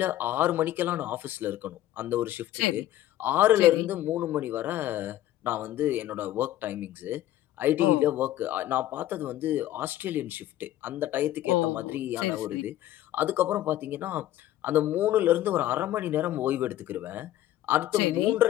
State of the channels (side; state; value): right; quieter; 13.7 dB